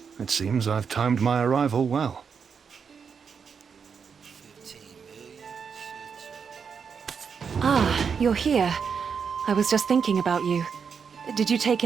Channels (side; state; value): left; quieter; 6.3 dB